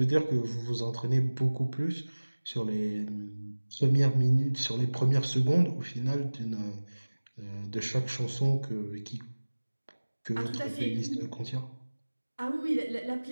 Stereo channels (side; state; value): both; inverted; correlation -1.00